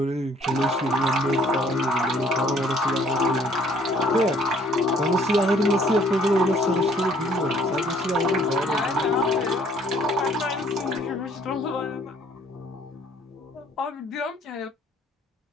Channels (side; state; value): both; normal; correlation 0.60